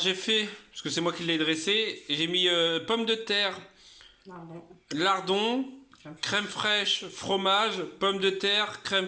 fait, parce que c'est moi qui l'ai dressée, j'ai mis pommes de terre, lardon, crème fraîche, fromage, pommes de terre,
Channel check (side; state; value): both; identical; correlation 1.00